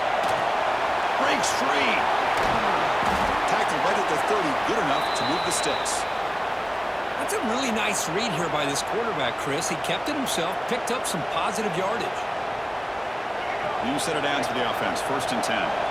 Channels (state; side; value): identical; both; correlation 1.00